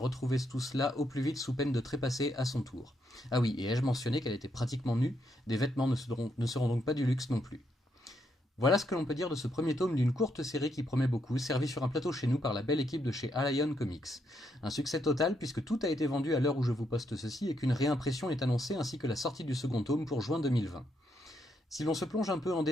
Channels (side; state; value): both; normal; correlation 0.77